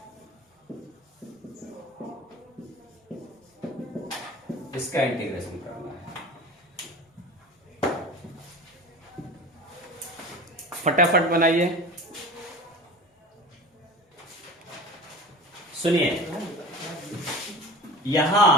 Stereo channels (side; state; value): both; normal; correlation 0.34